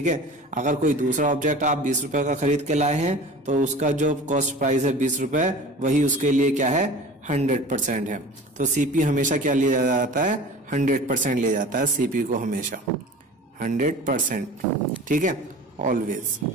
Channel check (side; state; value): both; normal; correlation 0.39